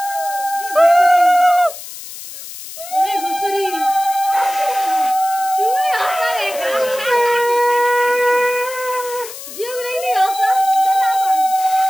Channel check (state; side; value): noise; left; hiss, 13 dB below the sound